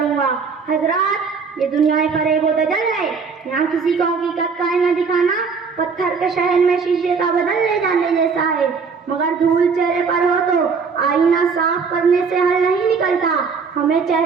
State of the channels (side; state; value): left; quieter; 5.3 dB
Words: گا۔ حضرات، یہ دنیا فریب و دجل ہے، یہاں کسی کو حقیقت کا آئینہ دکھانا پتھر کے شہر میں شیشے کا بدل لے جانے جیسا ہے، مگر دھول چہرے پر ہو تو آئینہ صاف کرنے سے حل نہیں نکلتا، ہمیں